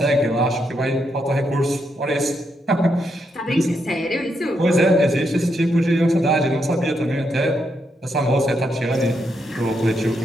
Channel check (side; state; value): both; normal; correlation 0.80